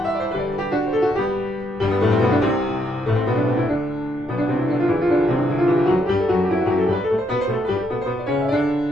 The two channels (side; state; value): both; normal; correlation 0.76